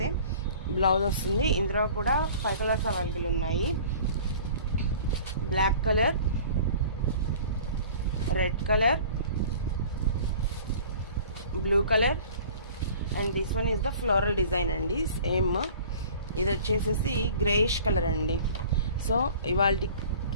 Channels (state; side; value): inverted; both; correlation -0.46